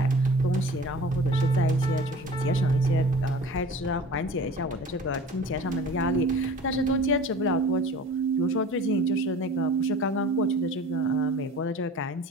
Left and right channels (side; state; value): both; normal; correlation 0.42